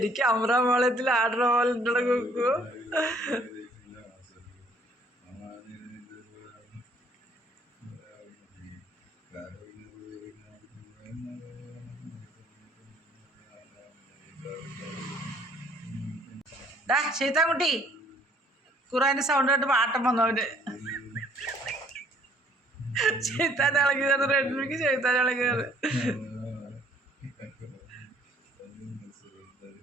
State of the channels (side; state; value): both; normal; correlation 0.61